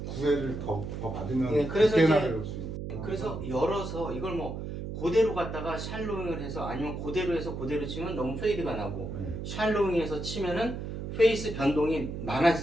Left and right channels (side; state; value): right; noise; hum, 6 dB below the sound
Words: 9회를 더 받으면 네, 그래서 그때나 이제- 배울 수 있어요. 그래서 열어서 이걸 뭐 그대로 갖다가 샬로잉을 해서 아니면 그대로 해서 그대로 치면 너무 페이드가 나고 네. 샬로잉해서 치면은 페이스 변동이